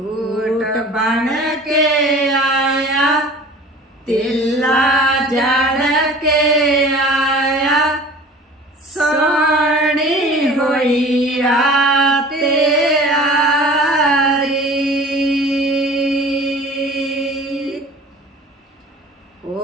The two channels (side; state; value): both; normal; correlation 0.43